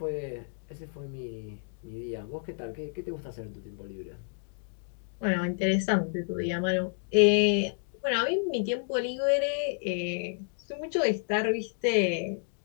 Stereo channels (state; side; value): silent; right; digital silence